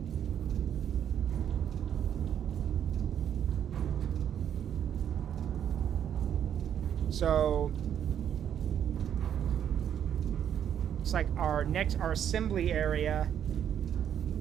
So looks like our assembly area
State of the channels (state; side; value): quieter; left; 9.4 dB